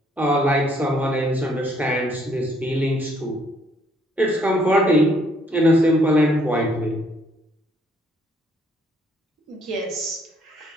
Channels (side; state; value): both; normal; correlation 0.67